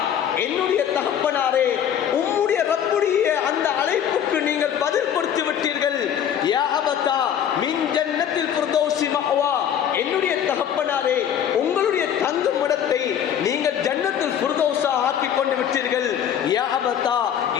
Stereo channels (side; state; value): right; quieter; 9.3 dB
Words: என்னுடைய தகப்பனாரே, உம்முடைய ரப்புடைய அந்த அழைப்புக்கு நீங்கள் பதில் கொடுத்து விட்டீர்கள். யா அபதா அபதா மின் ஜன்னத்தில் ஃபிர்தௌஸி மஅவா, என்னுடைய தகப்பனாரே உங்களுடைய தங்கும் இடத்தை நீங்கள் ஜன்னத்துல் ஃபிர்தௌஸா ஆக்கிக் கொண்டு விட்டீர்கள். யா அபதா